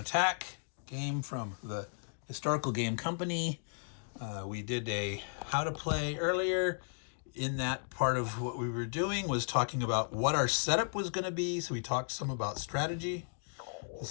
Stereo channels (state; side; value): silent; right; digital silence